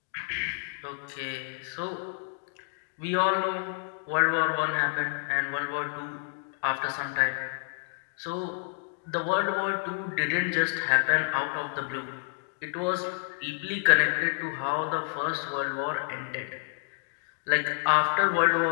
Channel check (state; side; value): silent; right; digital silence